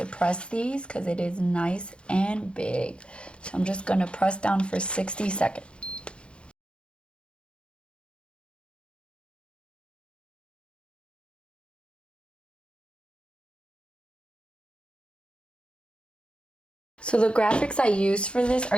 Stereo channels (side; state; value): right; late; 0.056 ms